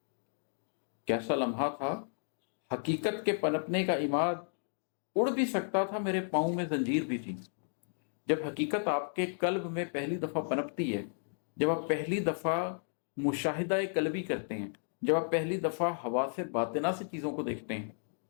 कैसा लम्हा था हकीकत के पनपने का इमाद, उड़ भी सकता था मेरे पाँव में जंजीर भी थी। जब हकीकत आपके कल्ब में पहली दफ़ा पनपती है, जब आप पहली दफ़ा मुशाहिदा कल्बी करते हैं, जब आप पहली दफ़ा हवा से बातिना से चीज़ों को देखते हैं,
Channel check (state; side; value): silent; right; digital silence